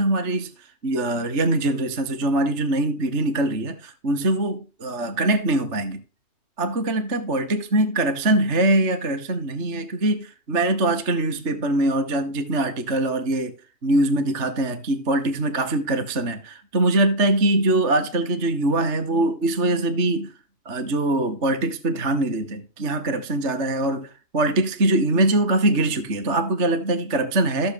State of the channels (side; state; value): left; late; 3.3 ms